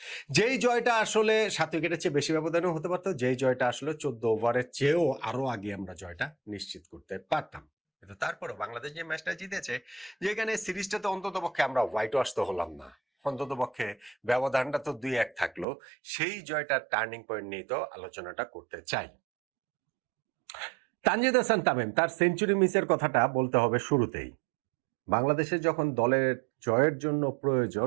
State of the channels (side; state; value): left; drops out; at 15.7 s